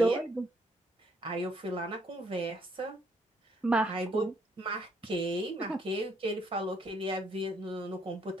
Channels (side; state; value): both; normal; correlation 0.69